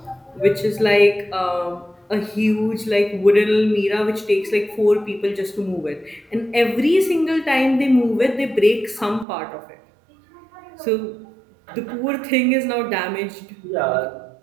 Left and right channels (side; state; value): left; drops out; at 9.2 s